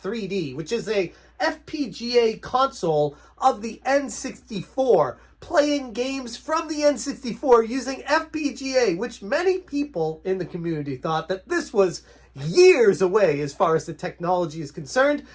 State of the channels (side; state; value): both; identical; correlation 1.00